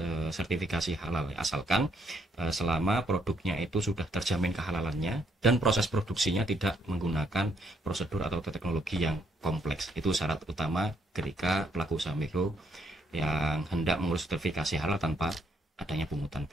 sertifikasi halal, asalkan selama produknya itu sudah terjamin kehalalannya dan proses produksinya tidak menggunakan prosedur atau teknologi yang kompleks. Itu syarat utama ketika pelaku usaha mikro yang hendak mengurus sertifikasi halal tanpa adanya pungutan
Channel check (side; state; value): both; normal; correlation 0.72